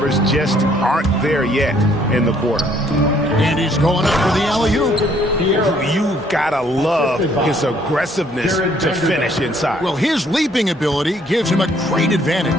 just aren't there yet in the quarter. And he's going up for the alley-oop. You've got to love his aggressiveness to finish inside. Well, his leaping ability gives him a great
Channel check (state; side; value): normal; both; correlation 0.64